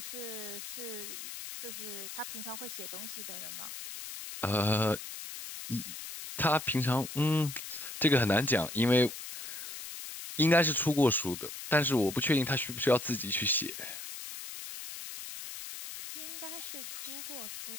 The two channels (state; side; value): noise; left; hiss, 9 dB below the sound